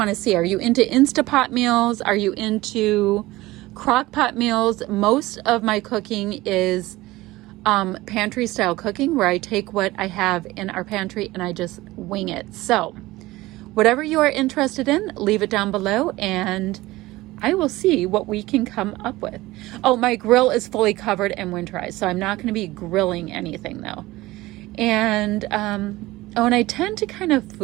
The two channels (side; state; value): left; quieter; 18.7 dB